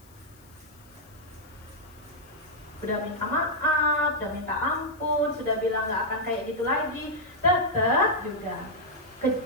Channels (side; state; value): left; noise; hiss, 27 dB below the sound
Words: Udah minta maaf, udah minta ampun, sudah bilang nggak akan kayak gitu lagi, tetap juga